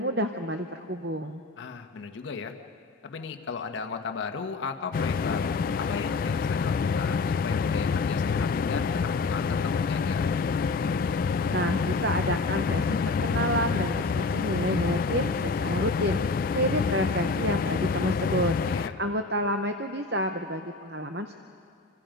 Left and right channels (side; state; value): right; quieter; 3.4 dB